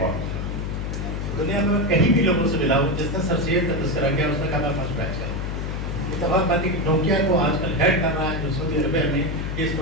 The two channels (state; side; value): noise; left; hum, 3 dB below the sound